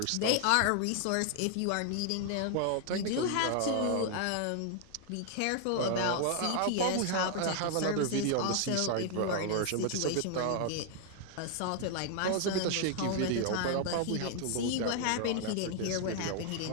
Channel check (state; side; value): different; both; correlation 0.00